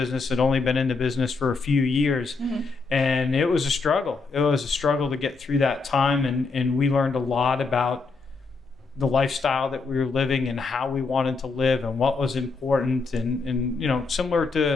had only been in the business for a few years, and it was a struggle. It was a struggle to get through that time, and we learned a lot about the lifestyle that we were living and how we wanted to live and what was important, and similar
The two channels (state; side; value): quieter; right; 4.3 dB